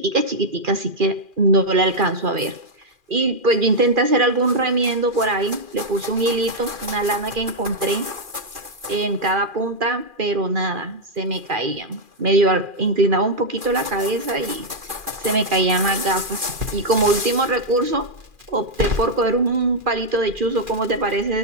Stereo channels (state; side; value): late; left; 2.4 ms